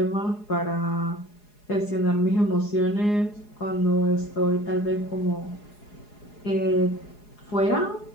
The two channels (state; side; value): late; right; 4.8 ms